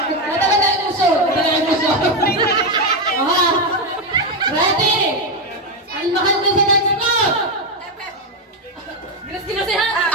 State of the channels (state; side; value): normal; both; correlation 0.07